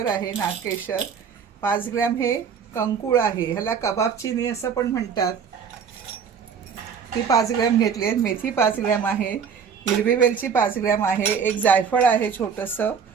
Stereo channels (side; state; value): left; quieter; 6.7 dB